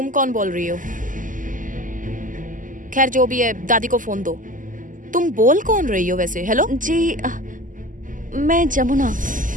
कौन बोल रही हो? खैर जो भी है, दादी को फोन दो। तुम बोल कौन रही हो वैसे? हेलो जी, मैं जमुना।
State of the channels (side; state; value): left; late; 0.38 ms